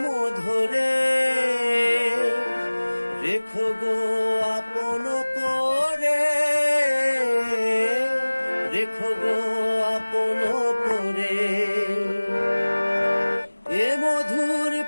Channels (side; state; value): both; inverted; correlation -1.00